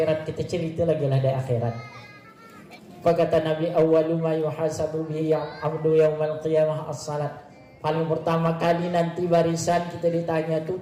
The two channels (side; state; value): both; identical; correlation 1.00